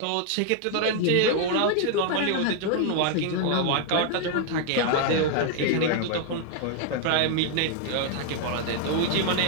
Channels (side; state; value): both; different; correlation 0.00